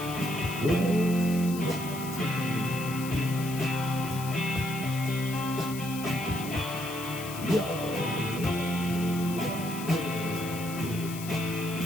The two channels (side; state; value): left; noise; hiss, 11 dB below the sound